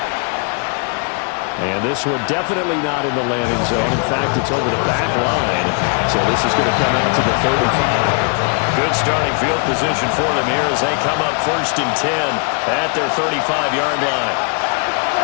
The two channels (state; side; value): quieter; right; 39.5 dB